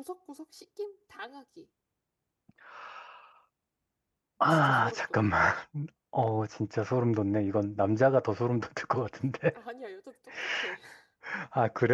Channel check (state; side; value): identical; both; correlation 1.00